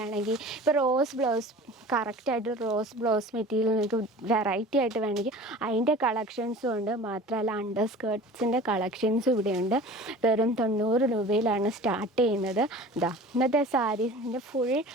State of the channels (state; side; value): normal; both; correlation 0.40